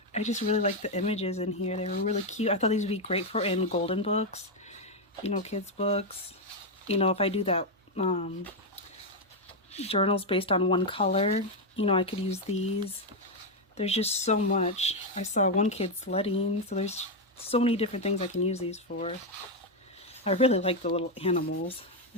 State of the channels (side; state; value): both; normal; correlation 0.03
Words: I just really like the images in here. They were really cute. I thought these would be great for in golden books, you know, kids books. You know, if I do that journals based on one color, you know, I could use these. There's just so much. I saw one kid sledding, so there's so many different things I can use these for. I really like the little animals.